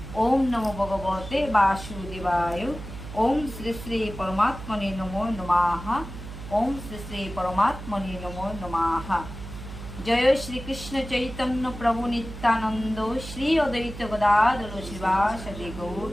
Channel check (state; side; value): noise; right; hum, 11 dB below the sound